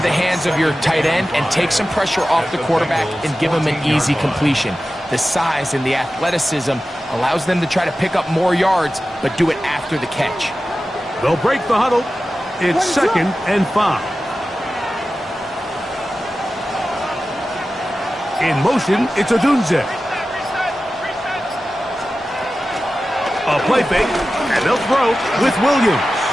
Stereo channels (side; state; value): both; normal; correlation 0.94